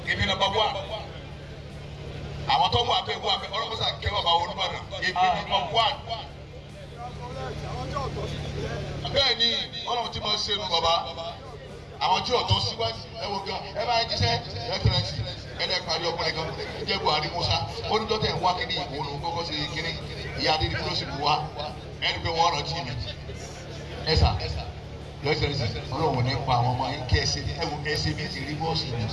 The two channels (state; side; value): identical; both; correlation 1.00